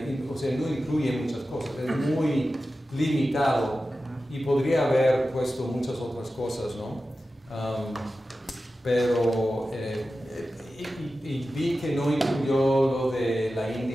o sea, no incluye muchas cosas, es muy limitado y podría haber puesto muchas otras cosas, ¿no? Pero y vi que no incluyó lo de la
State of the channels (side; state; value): both; normal; correlation 0.93